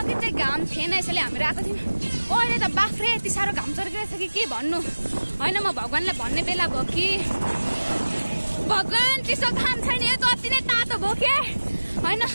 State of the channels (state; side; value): inverted; both; correlation -1.00